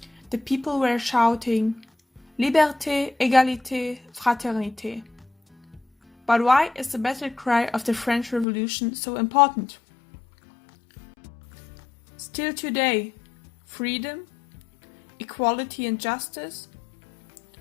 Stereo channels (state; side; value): drops out; right; at 8.5 s